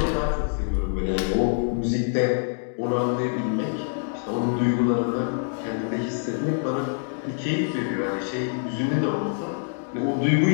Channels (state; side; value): silent; right; digital silence